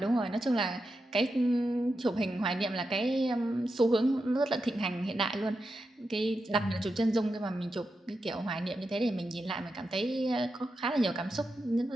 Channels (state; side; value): normal; both; correlation 0.88